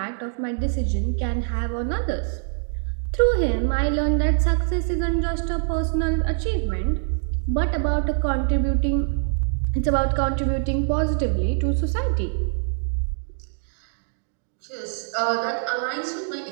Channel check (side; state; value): left; silent; digital silence